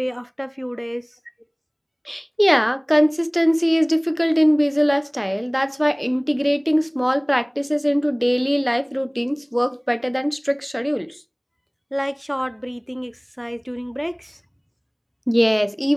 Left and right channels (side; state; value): both; identical; correlation 1.00